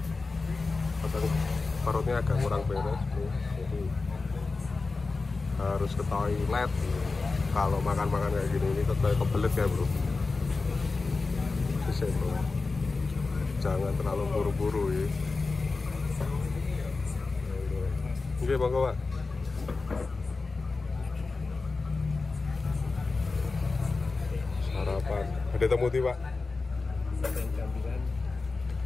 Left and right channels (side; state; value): right; quieter; 3.9 dB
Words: kadang perutnya agak kurang beres, bro. Jadi harus ke toilet kalau makan-makan kayak gini. Ini kayak kebelet ya, bro. Bisa, bro, jangan terlalu buru-buru ya. Oke, monggo, Pak. Sarapan ada temuti, Pak.